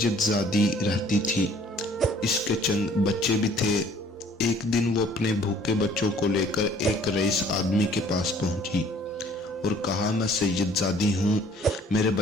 रहती थी। इसके चंद बच्चे भी थे। एक दिन वो अपने भूखे बच्चों को लेकर एक रईस आदमी के पास पहुंची और कहा, मैं सैयदजादी हूँ, मेरे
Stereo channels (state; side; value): normal; both; correlation 0.56